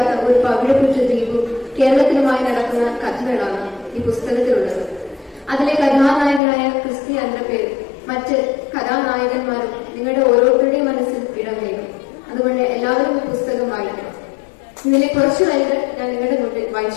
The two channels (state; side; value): drops out; right; at 6.4 s